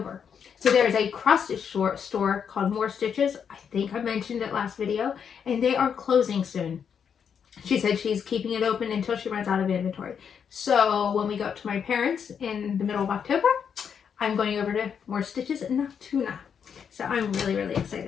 So there's a cross-stitch store called More Stitches. I think I mentioned it last video, and they are closing soon. She said she's keeping it open until she runs out of inventory. So when we go up to my parents in the middle of October, I'm going over to More Stitches in Altoona. So I'm really, really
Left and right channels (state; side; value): quieter; right; 7.3 dB